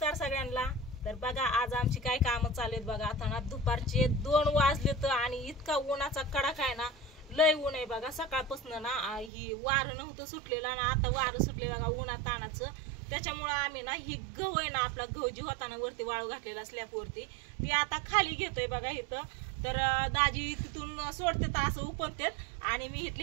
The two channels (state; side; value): drops out; left; at 9.3 s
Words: सगळ्यांना। तर बघा आज आमची काय कामं चालू आहेत बघा। आता ना दुपारचे 2 वाजलेत आणि इतका उन्हाचा कडाका आहे ना, लय ऊन आहे बघा। सकाळपासून ना ही वारं नव्हतं सुटलेलं आणि आता वारं सुटले बघा उन्हात तानाचं। त्याच्यामुळे आम्ही ना ही गहू आहे ना, आपला गहू जी होता ना वरती वाळू घातलेला स्लॅबवरती, ती आता खाली घेतोय बघा इथं। तर दाजी तिथून सोडते तर असं उपनतेत आणि मी